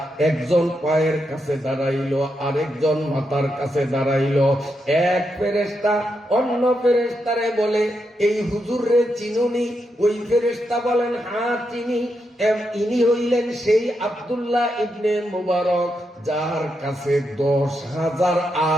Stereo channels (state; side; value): normal; both; correlation 0.83